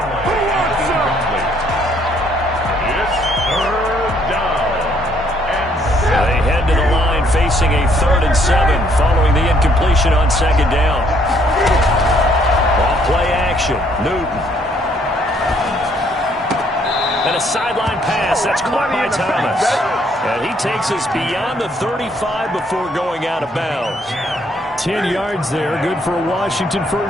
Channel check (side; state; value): both; normal; correlation 0.67